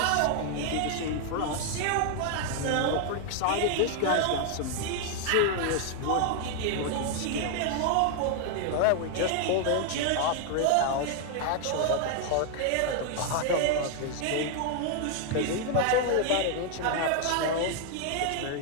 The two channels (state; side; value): different; both; correlation 0.00